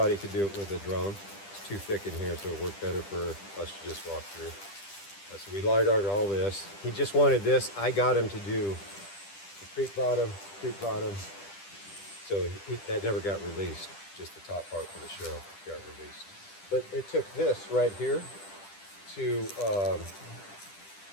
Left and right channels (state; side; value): late; right; 10 ms